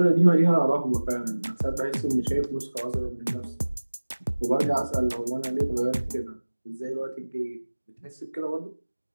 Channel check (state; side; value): inverted; both; correlation -1.00